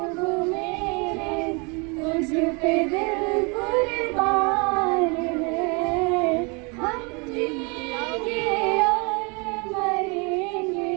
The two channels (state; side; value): quieter; left; 31.6 dB